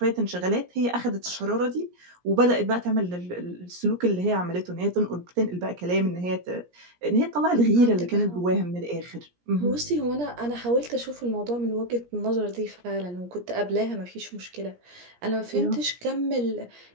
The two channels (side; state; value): left; late; 17 ms